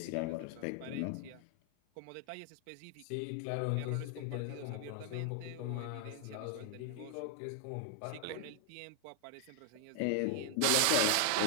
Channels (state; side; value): different; both; correlation 0.00